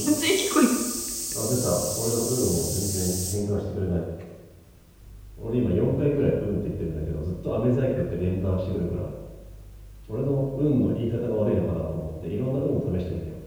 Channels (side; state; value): both; identical; correlation 1.00